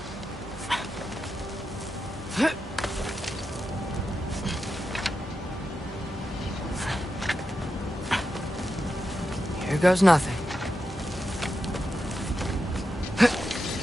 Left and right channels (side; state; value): both; normal; correlation 0.88